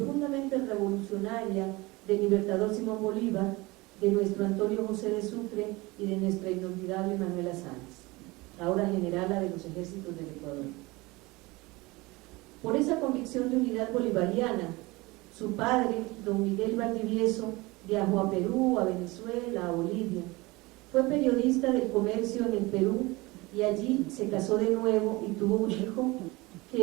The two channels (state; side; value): quieter; left; 22.7 dB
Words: revolucionaria del libertador Simón Bolívar, de nuestro Antonio José de Sucre y de nuestra inolvidable Manuela Sáenz, ahora generala de los ejércitos del Ecuador. Por esa convicción de unidad bolivariana, su padre, don Miguel Valdivieso, viajó a Perú, a Venezuela, a Bolivia. Fue periodista del comercio en el Perú y allí se casó de nuevo y tuvo un hijo